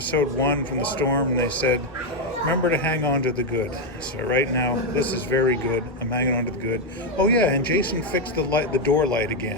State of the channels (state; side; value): normal; both; correlation 0.04